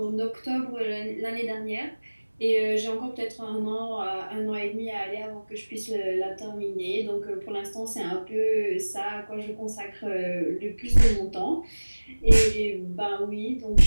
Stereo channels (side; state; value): both; inverted; correlation -1.00